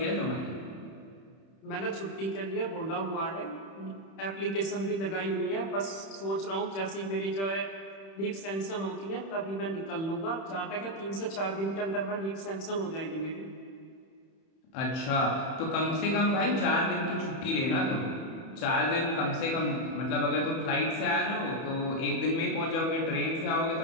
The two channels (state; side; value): late; right; 31 ms